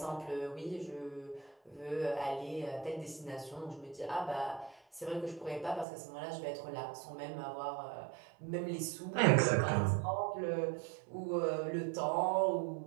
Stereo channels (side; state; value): left; drops out; at 5.9 s